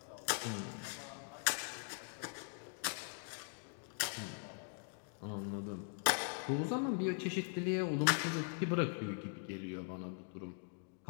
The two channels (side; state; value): right; silent; 50 dB below the other